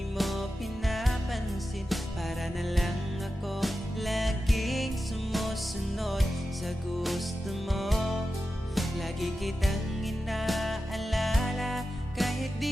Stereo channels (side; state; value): both; normal; correlation 0.92